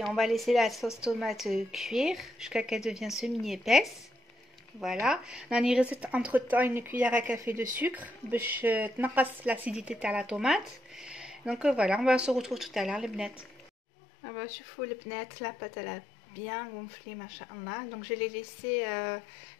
on va laisser la sauce tomate cuire jusqu'à qu'elle devienne semi-épaisse. Voilà, on a entre temps une cuillère à café de sucre pour l'acidité de la tomate. Donc voilà, on va se retrouver tout à l'heure les bnettes. On va chauffer les bnettes, la pâte elle a bien gonflé machallah. Donc je l'ai laissé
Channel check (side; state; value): right; drops out; at 13.7 s